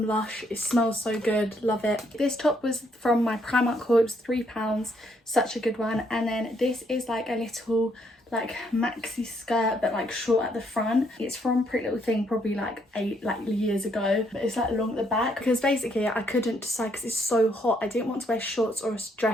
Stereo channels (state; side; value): normal; both; correlation 0.71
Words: Lush. It smells so good, love it. This top was from my Primark haul, it was £3, such a good one. And then this is like a little like maxi skirt but like short at the front. It's from Pretty Little Thing, probably like 8 years ago, but it's like long at the back because basically I couldn't decide because it's so hot. I didn't want to wear shorts or a